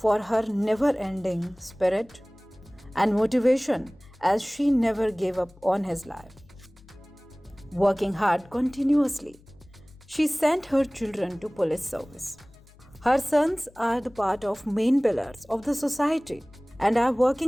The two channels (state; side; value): noise; left; hum, 26 dB below the sound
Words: her never-ending spirit and motivation as she never gave up on his life. Working hard continuously, she sent her children to police service. Her sons are the part of main pillars of the society and are